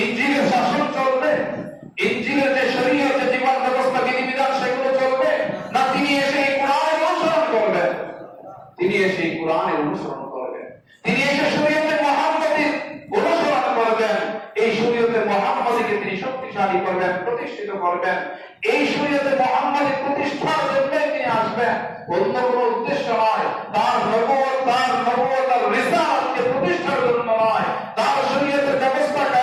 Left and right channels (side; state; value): both; identical; correlation 1.00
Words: শাসন চলবে, ইনজিলের যে শরীয়ত, যে জীবন ব্যবস্থা, বিধিবিধান, সেগুলো চলবে না তিনি এসে এই কোরআনের অনুসরণ করবেন? তিনি এসে এই কোরআনের অনুসরণ করবেন, তিনি এসে শরীয়তে মুহাম্মাদীর অনুসরণ করবেন। এই শরীয়তে মুহাম্মাদীকে তিনি শক্তিশালী করবেন, প্রতিষ্ঠিত করবেন। এই শরীয়তে মুহাম্মাদী প্রতিষ্ঠার জন্য তিনি আসবেন, অন্য কোনো উদ্দেশ্য নয়। তার নবুয়ত, তার রিসালাতকে প্রতিষ্ঠার জন্য নয়, তার শরীয়তের ব্যবস্থা